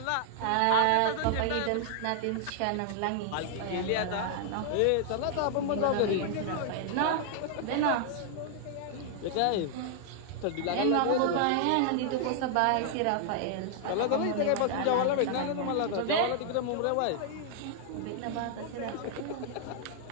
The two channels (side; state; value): both; different; correlation -0.01